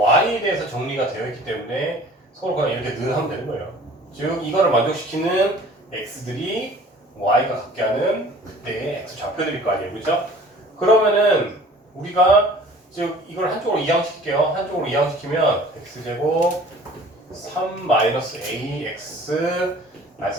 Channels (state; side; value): normal; both; correlation 0.48